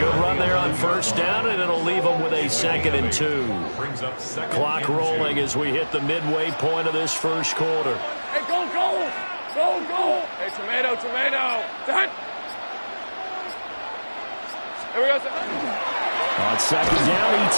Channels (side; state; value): both; inverted; correlation -1.00